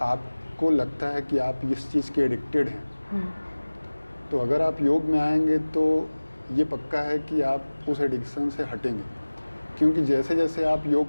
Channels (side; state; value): both; inverted; correlation -1.00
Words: आपको लगता है कि आप इस चीज़ के एडिक्टेड हैं तो अगर आप योग में आएंगे तो ये पक्का है कि आप उस एडिक्शन से हटेंगे। क्योंकि जैसे जैसे आप